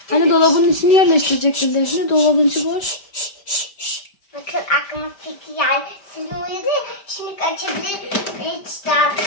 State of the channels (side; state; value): right; late; 5.1 ms